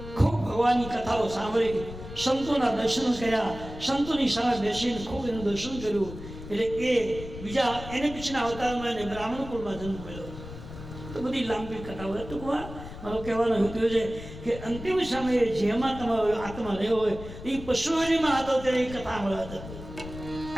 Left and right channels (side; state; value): left; noise; rumble, 12 dB below the sound